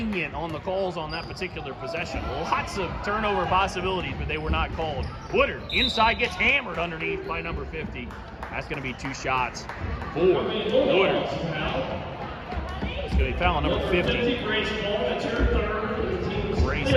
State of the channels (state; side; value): identical; both; correlation 1.00